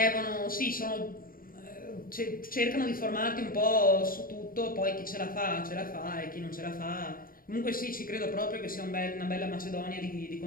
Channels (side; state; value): right; late; 0.41 ms